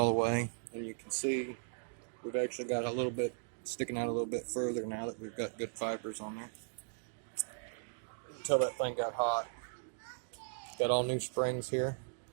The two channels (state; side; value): silent; left; digital silence